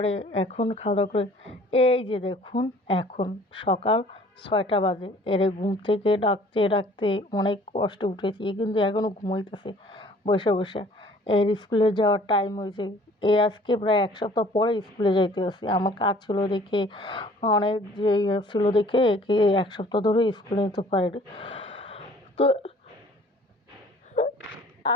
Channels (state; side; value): normal; both; correlation 0.54